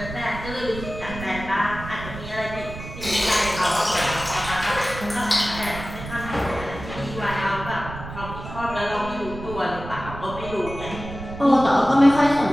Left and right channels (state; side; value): noise; right; rumble, 11 dB below the sound